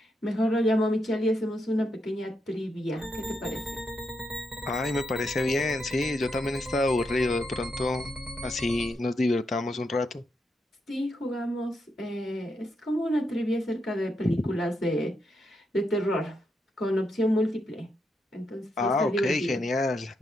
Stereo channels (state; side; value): normal; both; correlation 0.82